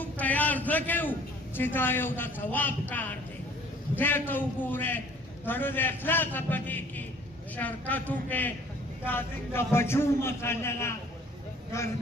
تیار ځکه یو چې دا یو د ثواب کار دی خدای ته وګورئ زړه د اخلاصه په دې کې شرکت وکړئ دا زموږ د بچو مسله ده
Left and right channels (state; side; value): normal; both; correlation 0.54